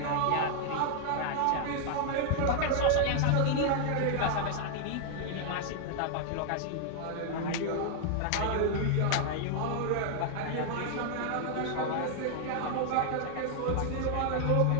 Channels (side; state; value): both; different; correlation 0.00